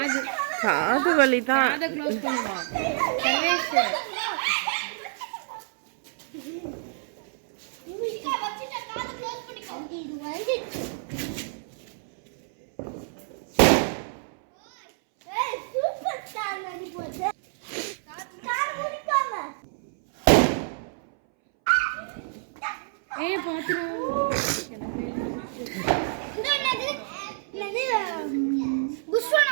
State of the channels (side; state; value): left; silent; 60 dB below the other